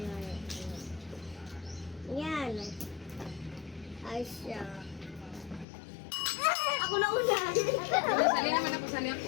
Yan. Ice yan. Ako na una. Sali naman ako. Sali ako.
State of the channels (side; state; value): right; drops out; at 5.7 s